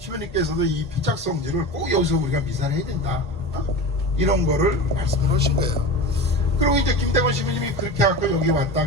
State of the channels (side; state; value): both; normal; correlation 0.29